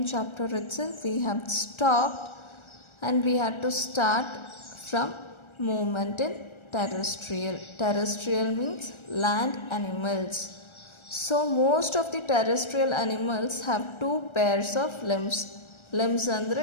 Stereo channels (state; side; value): late; right; 1.4 ms